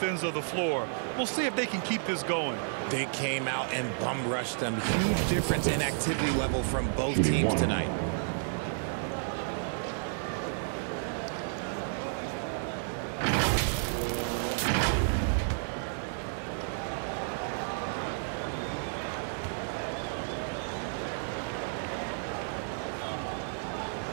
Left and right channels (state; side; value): silent; left; 57 dB below the other